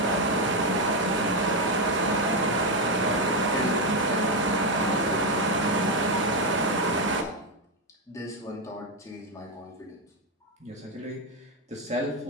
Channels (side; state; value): both; normal; correlation 0.06